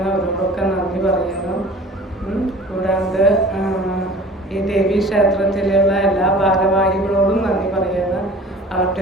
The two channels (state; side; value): normal; both; correlation 0.45